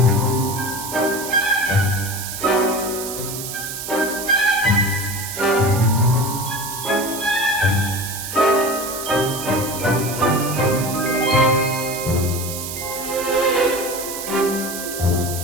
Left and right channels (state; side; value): noise; right; hiss, 7 dB below the sound